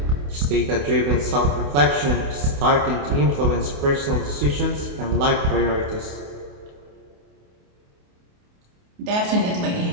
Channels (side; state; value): left; late; 28 ms